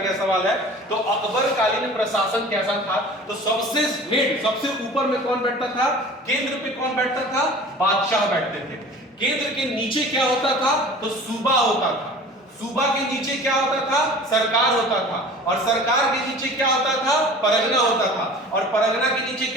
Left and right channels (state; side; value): normal; both; correlation 0.42